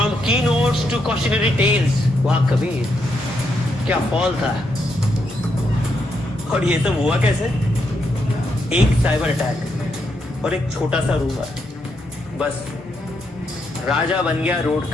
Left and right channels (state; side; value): normal; both; correlation 0.79